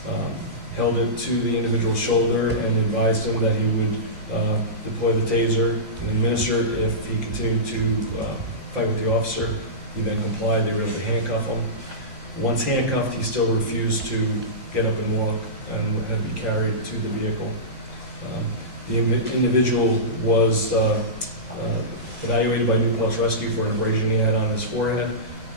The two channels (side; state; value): both; normal; correlation -0.19